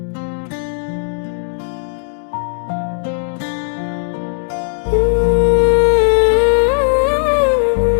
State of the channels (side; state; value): right; silent; digital silence